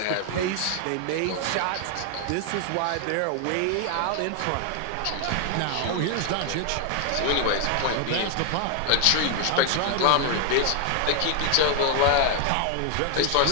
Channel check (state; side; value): different; both; correlation 0.00